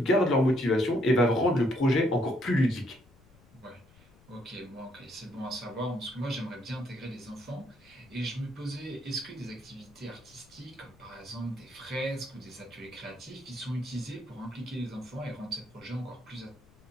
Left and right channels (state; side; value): noise; left; rumble, 27 dB below the sound